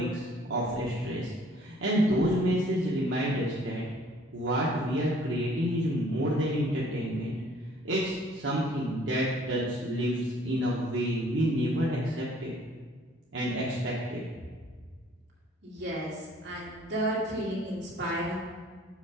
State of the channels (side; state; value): both; normal; correlation 0.57